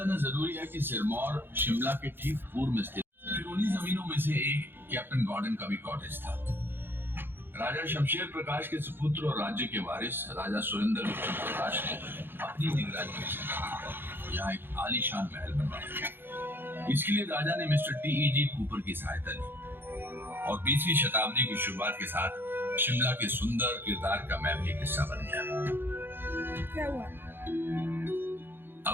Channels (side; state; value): left; late; 0.10 ms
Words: जरूरी है कि सिरमौर शिमला के ठीक पूर्व में स्थित। फिर उन्हीं जमीनों में से एक कैप्टन गॉर्डन का भी कॉटेज था। राजा शमशेर प्रकाश के सुपुत्र और राज्य के वारिस राजा सुरेंद्र विक्रम प्रकाश ने अपनी निगरानी में यहाँ एक आलीशान महल बनवाया। इसके लिए राजा ने मिस्टर टी.ई.जी. कूपर की सहायता ली और 20वीं शताब्दी की शुरुआत के साथ शिमला के सुंदर किरदार का मैं भी एक हिस्सा बन गया। क्या हुआ?